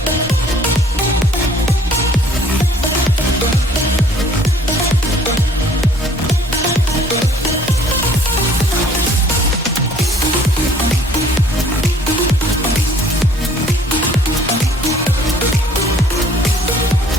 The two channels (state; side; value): normal; both; correlation 0.57